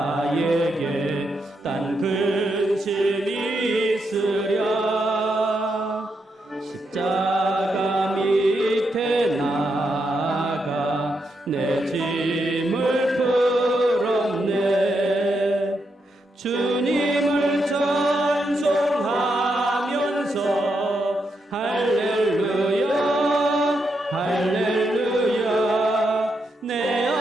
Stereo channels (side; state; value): both; normal; correlation 0.82